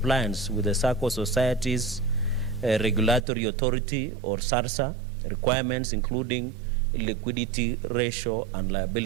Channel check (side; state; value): left; drops out; at 3.2 s